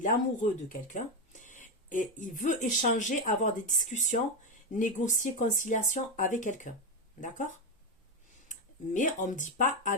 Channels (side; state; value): both; normal; correlation 0.10